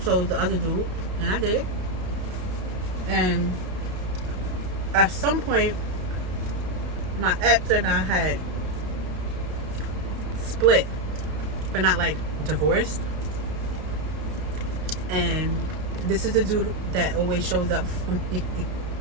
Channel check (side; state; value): left; late; 32 ms